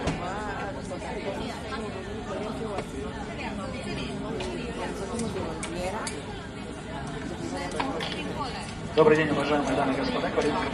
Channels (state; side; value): identical; both; correlation 1.00